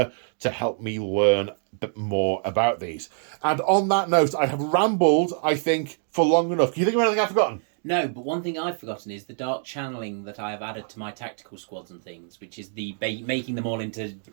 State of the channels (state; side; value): silent; left; 61 dB below the other